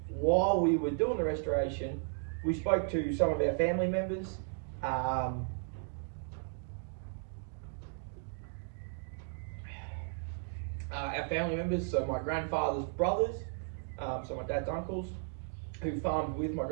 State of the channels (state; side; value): silent; left; 54 dB below the other